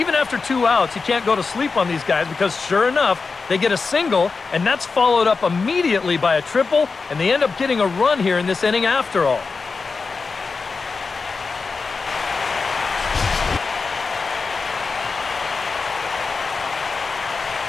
after 2 outs, you can't go to sleep on these guys because sure enough, they get a single, and that's followed up immediately by a triple, and they end up getting a run here in this inning after all.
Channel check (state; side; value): quieter; right; 4.5 dB